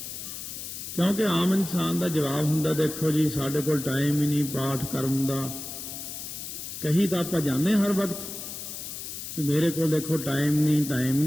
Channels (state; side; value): noise; left; hiss, 8 dB below the sound